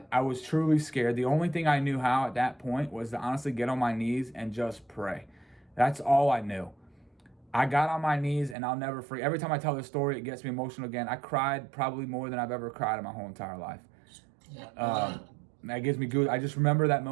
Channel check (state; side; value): drops out; left; at 8.6 s